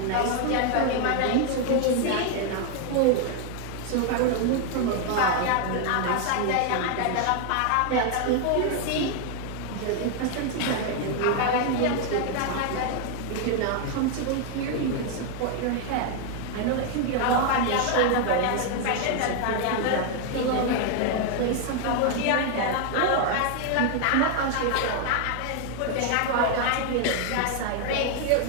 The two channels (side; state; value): both; different; correlation 0.00